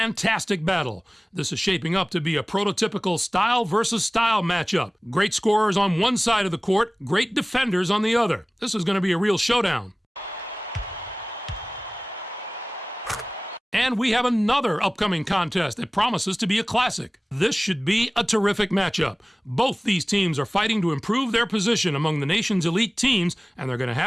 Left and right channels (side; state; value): both; normal; correlation 0.98